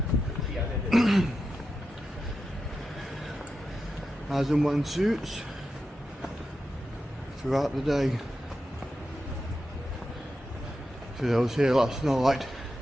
As and when suits throughout the day. So I was here last night.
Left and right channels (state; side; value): normal; both; correlation 0.89